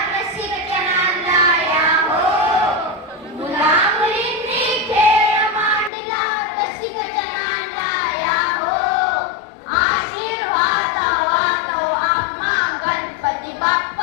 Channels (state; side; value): drops out; right; at 5.9 s